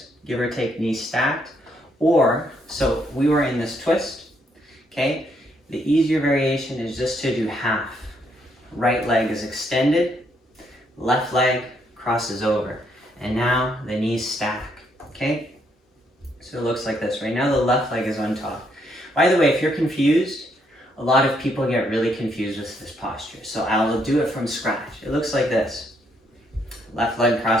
give or take knees stacked, or, so we were in this twist, okay? The easier variation is just to do half. Right leg is extended, left leg crosses over, and now the knees stack, okay? So it looks like this. Right now the left leg is on top. By the way, if you're confused, a lot of people get really confused with this posture. So I'll do it from scratch. It looks like this. Left leg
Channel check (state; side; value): normal; both; correlation 0.73